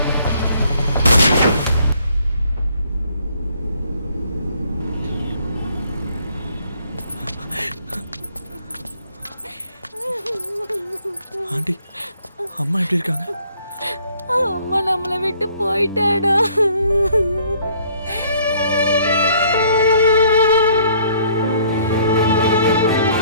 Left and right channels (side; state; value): both; inverted; correlation -0.61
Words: ஆண்டி, அம்மா எப்படி இருக்காங்க? அம்மா நம்மளை விட்டு போயிட்டாடா.